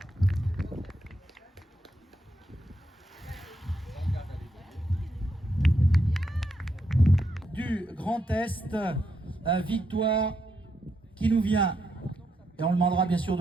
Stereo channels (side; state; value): both; normal; correlation 0.80